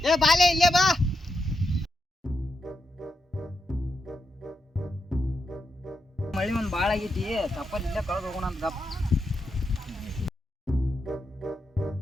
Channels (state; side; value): normal; both; correlation 0.85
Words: ಏ ಬಾಲೆ ಇಲ್ಲೇ ಬಾ. ಮಳಿ ಒಂದ್ ಬಾಳ ಆಗೈತಿ, ತಪ್ಪಲ್ ಇಲ್ಲೇ ಕಳೆದು ಹೋಗೋಣ ಅಂತ ಗಪ್.